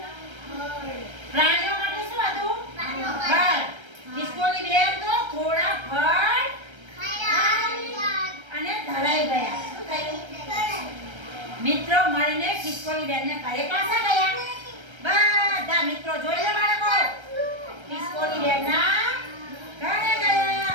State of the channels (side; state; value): left; late; 1.3 ms